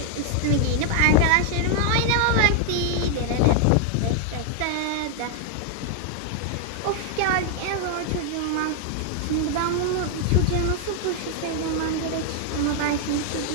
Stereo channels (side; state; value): both; different; correlation 0.00